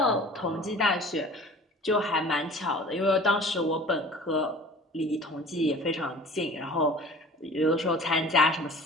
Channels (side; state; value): both; normal; correlation 0.44